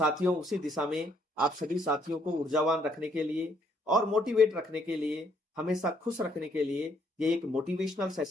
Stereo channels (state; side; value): normal; both; correlation 0.69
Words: उसी दिशा में आप सभी साथियों को ऊर्जावान रखने के लिए और मोटिवेट रखने के लिए, हमेशा खुश रखने के लिए ये एक मोटिवेशनल